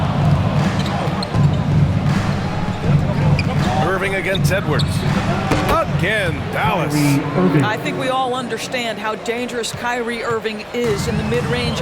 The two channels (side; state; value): both; identical; correlation 1.00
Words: Irving against Edwards. Again, Dallas. I think we all understand how dangerous Kyrie Irving is in the mid-range